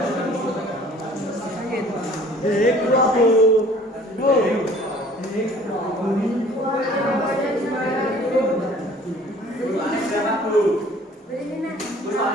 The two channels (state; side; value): normal; both; correlation 0.52